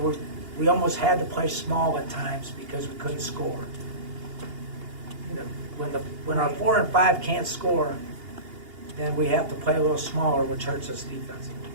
we almost had to play small at times because we couldn't score. When our 4 and 5 can't score, then we have to play a little smaller, which hurts us defensively.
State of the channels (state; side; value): late; left; 2.8 ms